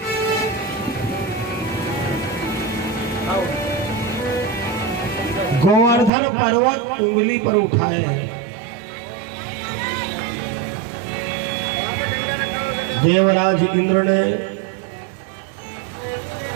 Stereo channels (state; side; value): drops out; left; at 6.1 s